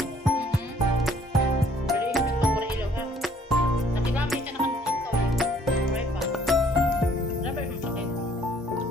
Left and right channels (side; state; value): both; normal; correlation 0.60